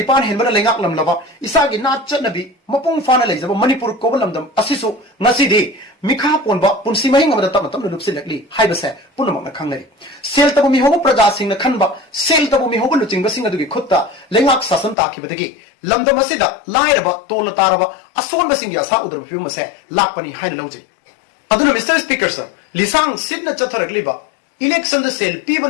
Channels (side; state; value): right; drops out; at 15.0 s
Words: henbana lengak lamlaba isagi nachanabi mapung fana leijaba manipur kobalamdam asisu ngasidi mikha ponba punsi mahing amada tamatam lupsilakli haibase punamakna khangnari sel tabu mi hobo praja singna khanba sel tabu mi hobo luchingba singa dugi khutta lengak sasan takhibadagi lamdam asida lairaba tola taraba asonba singi asa udrab phimase lakpani haina lawje aduna Mr. Speaker, sir lisang sidna chatharakliba election the sel